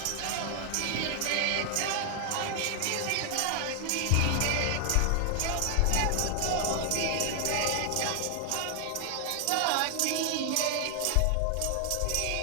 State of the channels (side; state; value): both; different; correlation 0.00